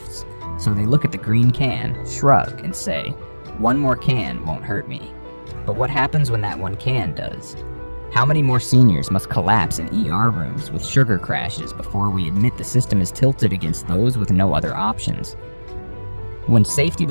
so they look at the green can, shrug, and say, "One more can won't hurt me." But what happens when that one can does? How many more seniors must collapse in ER rooms with sugar crashes before we admit the system is tilted against those with no other options? When safety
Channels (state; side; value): inverted; both; correlation -1.00